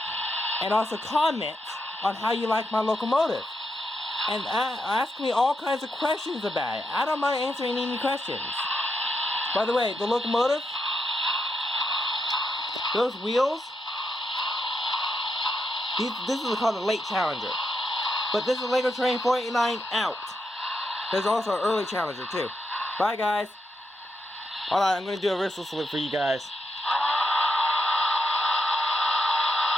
and also comment on how you like my locomotive. And ask me all kinds of questions about it. I don't mind answering any questions. By the way, the locomotive, those wheels, this is called a late Challenger. But this is Lego Train 489 out. There's also an early Challenger too. Bye guys. Hold on, I'm going to do a whistle salute for you guys.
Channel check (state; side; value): normal; both; correlation 0.83